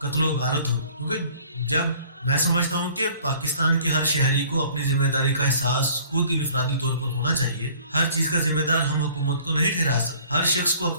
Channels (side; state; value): both; inverted; correlation -0.53